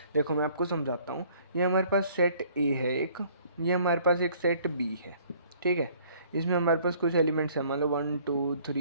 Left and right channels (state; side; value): inverted; both; correlation -0.58